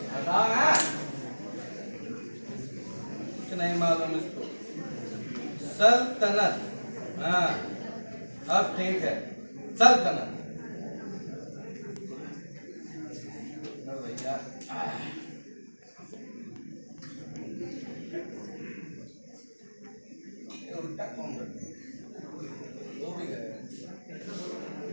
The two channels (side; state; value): both; inverted; correlation -1.00